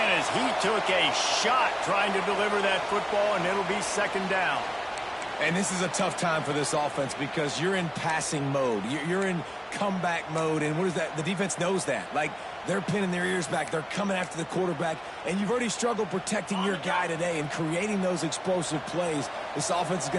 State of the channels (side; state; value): both; identical; correlation 1.00